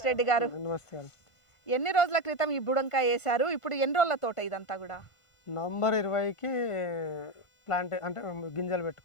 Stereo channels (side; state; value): right; late; 1.5 ms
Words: రెడ్డి గారు. నమస్కారం. ఎన్ని రోజుల క్రితం ఈ బుడంకాయ వేశారు? ఇప్పుడు ఎన్ని రోజుల తోట ఇదంతా కూడా? నవంబర్ 20కి ప్లాంట్ అంటే గింజలు